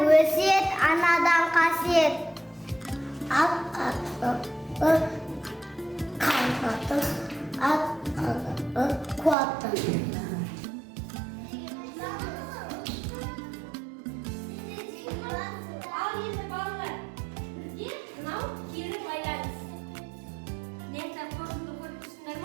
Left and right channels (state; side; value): drops out; left; at 9.3 s